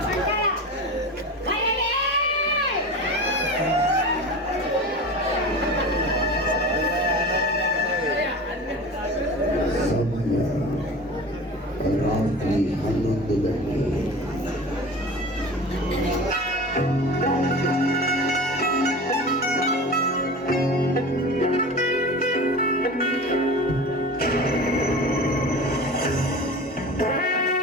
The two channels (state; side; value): normal; both; correlation 0.33